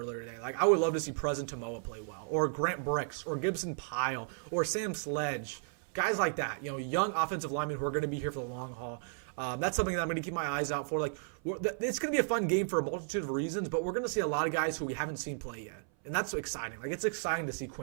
today. Like, I would love to see Preston Tamoa play well. Or Grant Bricks, or Gibson Pyle, or Sam Sledge. Guys like that, young offensive linemen who are going to be here for the long haul. That's something that I'm going to keep my eyes out for. Like, it's going to be a fun game for a multitude of reasons, but we're going to see a lot of guys who we haven't seen play yet, and that's exciting. Like, it's exciting to see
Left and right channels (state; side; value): silent; left; 55 dB below the other